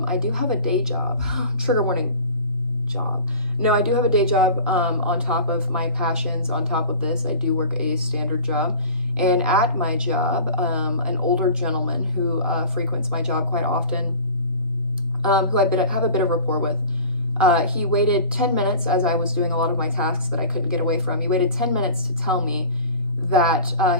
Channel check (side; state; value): both; inverted; correlation -0.40